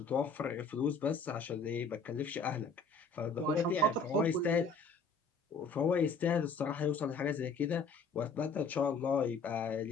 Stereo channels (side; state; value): right; quieter; 4.0 dB